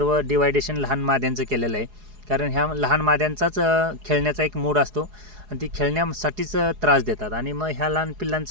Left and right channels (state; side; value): late; left; 4.8 ms